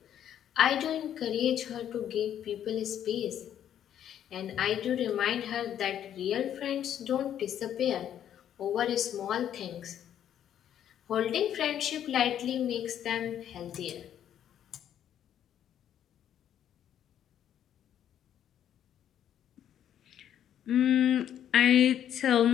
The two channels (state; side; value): quieter; right; 10.2 dB